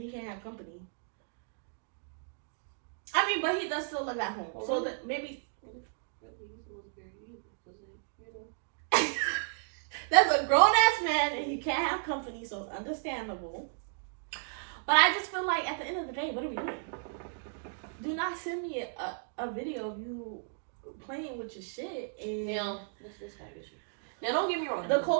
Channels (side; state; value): left; silent; digital silence